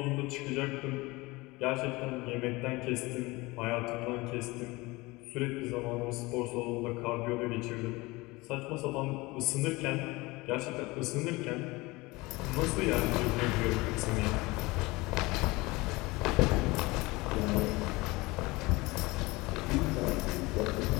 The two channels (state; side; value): quieter; right; 22.6 dB